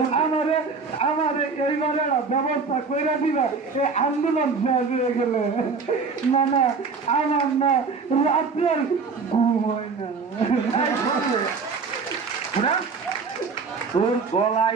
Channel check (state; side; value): quieter; left; 4.8 dB